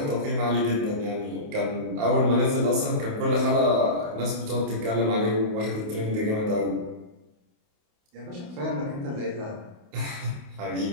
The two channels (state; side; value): late; left; 28 ms